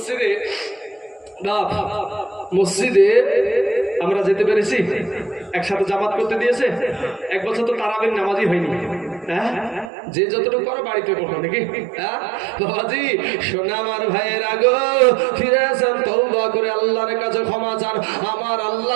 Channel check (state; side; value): drops out; left; at 9.9 s